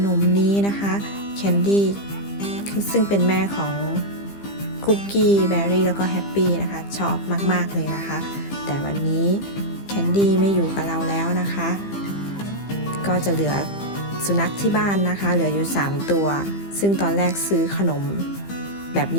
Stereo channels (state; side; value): late; right; 15 ms